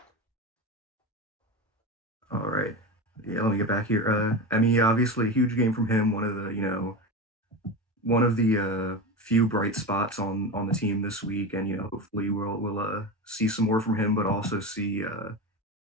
All right. Yeah, let me get back here. I mean, yeah, obviously a huge game from him, one of the few bright spots on the team this week, and hopefully we'll see some more from him, but also see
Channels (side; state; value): both; normal; correlation 0.22